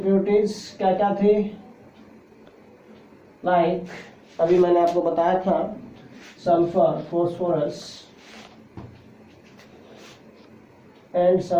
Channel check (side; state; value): both; identical; correlation 1.00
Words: क्या क्या थे, लाइक अभी मैंने आपको बताया था sulphur, phosphorus and